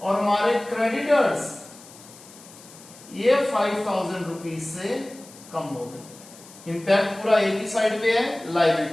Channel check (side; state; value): left; noise; hiss, 20 dB below the sound